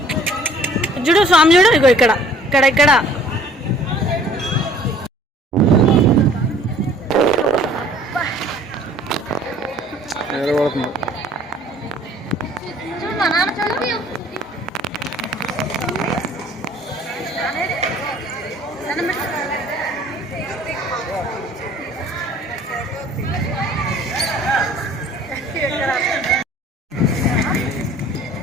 చూడు, స్వామి చూడు, ఇగో ఇక్కడ ఇక్కడ ఇక్కడ.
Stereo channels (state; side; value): normal; both; correlation 0.54